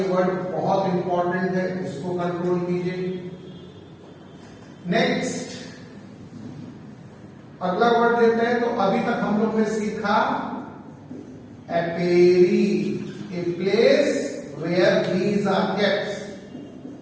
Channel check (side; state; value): both; identical; correlation 1.00